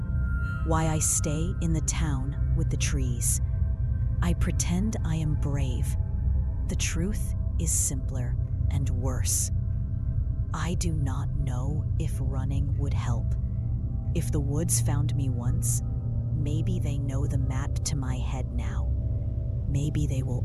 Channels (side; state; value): both; identical; correlation 1.00